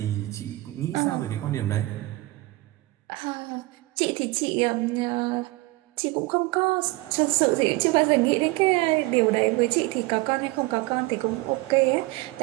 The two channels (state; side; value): quieter; left; 20.8 dB